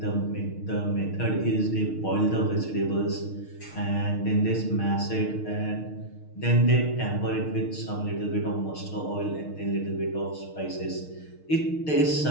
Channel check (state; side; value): late; right; 6.5 ms